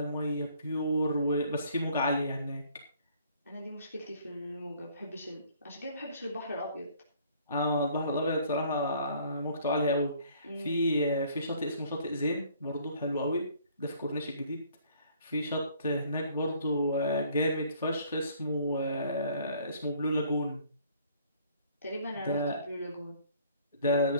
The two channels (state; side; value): inverted; both; correlation -0.58